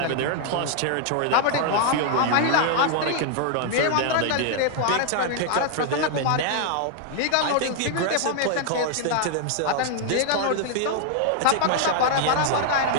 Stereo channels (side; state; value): both; different; correlation 0.00